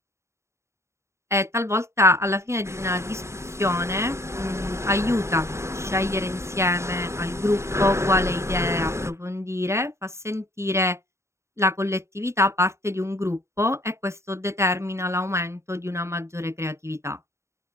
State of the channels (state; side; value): late; left; 0.13 ms